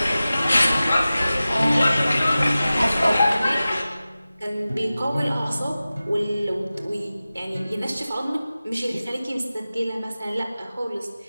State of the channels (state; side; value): inverted; both; correlation -0.96